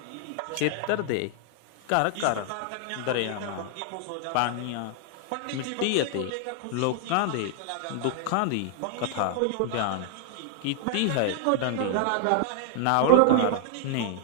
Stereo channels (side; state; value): both; different; correlation 0.00